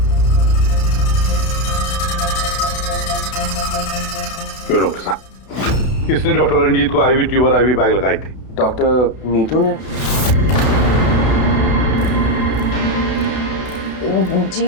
क्यों डॉक्टर साहब, किसने डॉक्टर रंजीत को आईवी ट्यूब और आईवी बैग लगाई थी? डॉक्टर नीतू ने।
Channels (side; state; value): right; late; 32 ms